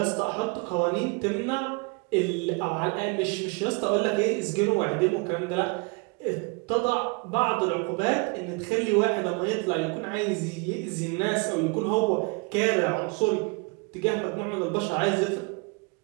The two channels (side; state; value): left; quieter; 31.1 dB